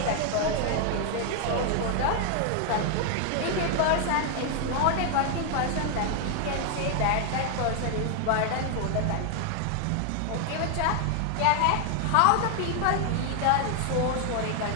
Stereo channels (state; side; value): different; both; correlation 0.00